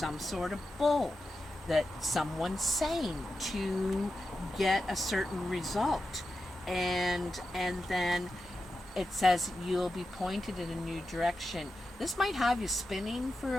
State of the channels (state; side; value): normal; both; correlation 0.90